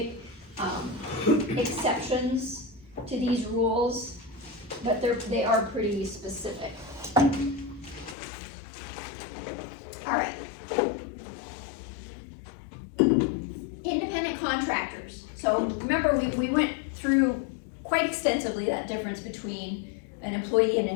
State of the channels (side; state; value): right; drops out; at 8.2 s